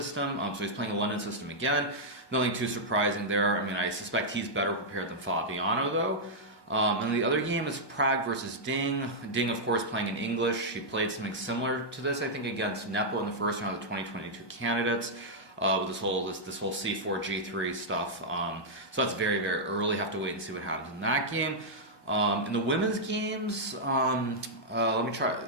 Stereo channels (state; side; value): late; right; 1.2 ms